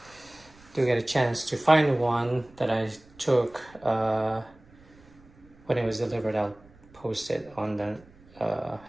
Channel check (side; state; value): right; noise; rumble, 26 dB below the sound